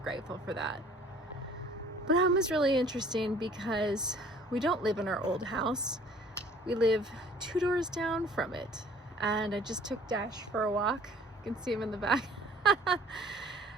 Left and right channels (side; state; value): both; normal; correlation 0.53